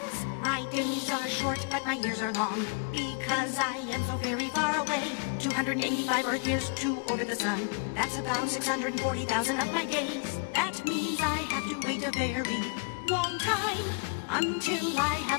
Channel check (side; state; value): right; quieter; 36.4 dB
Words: My days are short, but my years are long, because I am so very far away. 285 Earth years to orbit the sun. That's about 640,000 of my days. That means I have to wait a very long time until I